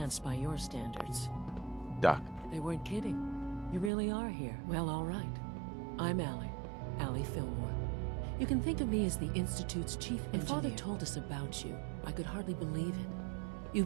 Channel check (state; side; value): drops out; left; at 3.9 s